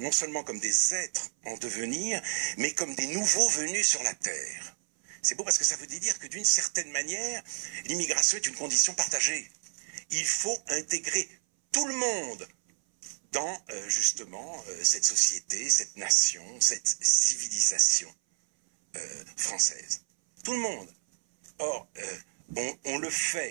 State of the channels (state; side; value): silent; left; 58 dB below the other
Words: seulement comme des êtres en devenir, mais comme des nouveaux venus sur la Terre. C'est beau parce que ça veut dire que d'une certaine manière, l'immigration est une condition partagée. Il faut intégrer tout le monde dans justement cette société, cette nation, cette civilisation française. Tout le monde. Or, on le